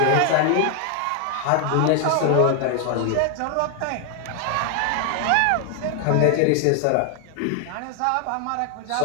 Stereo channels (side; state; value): both; different; correlation 0.00